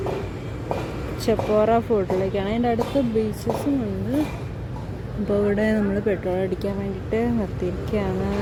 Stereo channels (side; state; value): both; identical; correlation 1.00